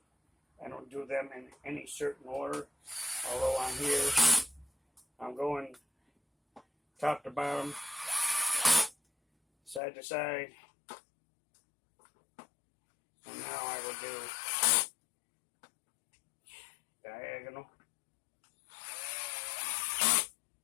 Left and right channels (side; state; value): right; drops out; at 9.8 s